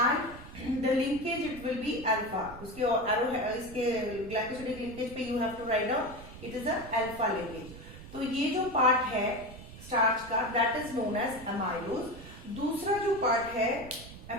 the linkage it will be alpha. उसके एरो इसके ग्लाइकोसिडिक लिंकेज पे you have to write down it is a alpha linkage. तो ये जो पार्ट है स्टार्च का that is known as amylose. दूसरा जो पार्ट है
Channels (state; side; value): noise; right; rumble, 15 dB below the sound